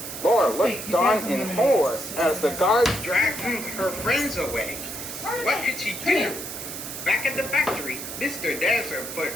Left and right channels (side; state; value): right; noise; hiss, 8 dB below the sound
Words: Laura looked on in horror as the guards dragged her friends away. What could she do? Back at the factory, Mr. Desert put